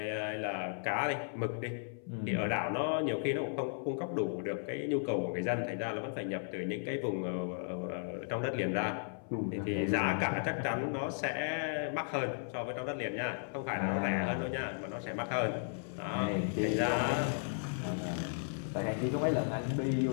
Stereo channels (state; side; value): silent; right; 54 dB below the other